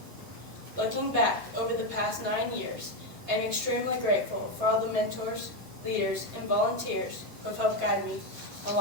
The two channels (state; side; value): late; left; 9.3 ms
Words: Looking back over the past 9 years, I am extremely grateful for all the mentors, leaders, and volunteers who have helped guide me